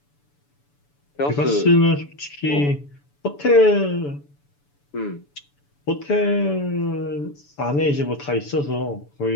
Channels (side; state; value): right; late; 7.0 ms